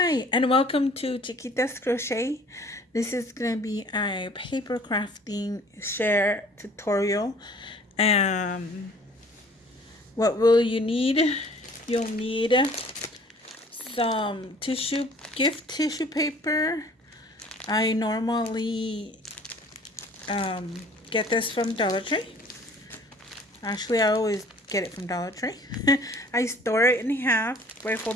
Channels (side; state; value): both; normal; correlation 0.52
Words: and welcome to Chiquitascrochet. This is going to be a paper crafting share tutorial. What will you need? You'll need some gift tissue paper. I normally get this from Dollar Tree. Actually, I always get it from Dollar Tree. I store it in half. I